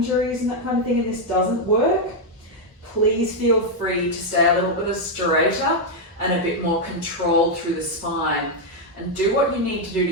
and that kind of thing and this doesn't work, please feel free to stay a little bit straighter and a bit more controlled through the spine. And do what you need to do to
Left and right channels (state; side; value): normal; both; correlation 0.01